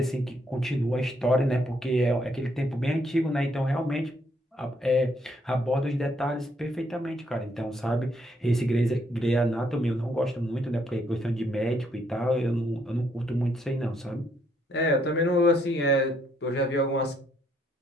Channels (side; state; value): both; normal; correlation 0.72